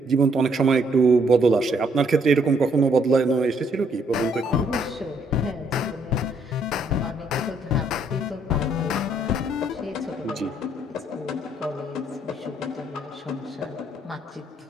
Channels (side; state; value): both; normal; correlation 0.69